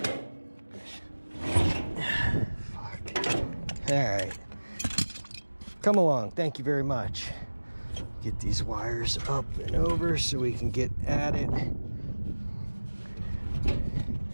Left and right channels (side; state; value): both; inverted; correlation -1.00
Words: Fuck. All right. Come along. Thank you very much. Get these wires up and over so we can get at it.